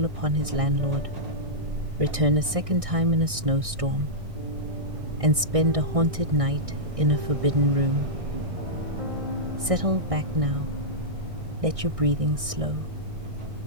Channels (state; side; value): late; left; 1.6 ms